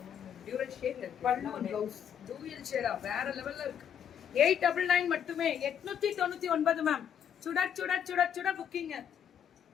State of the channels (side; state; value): right; quieter; 8.7 dB